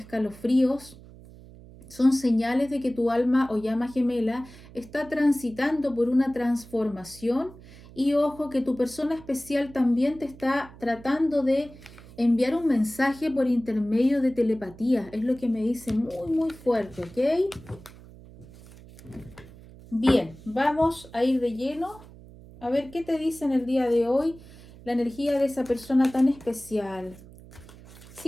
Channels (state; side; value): noise; right; hum, 20 dB below the sound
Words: Son señales de que tu alma o llama gemela está transitando por una transformación y ojo que tu persona especial también te está tratando de enviar un mensaje por intermedio de telepatía. Es lo que me dice muy fuerte, ¿ok? Bien, vamos a ir de lleno a ver qué te dice en el día de hoy la energía de esa persona tan especial.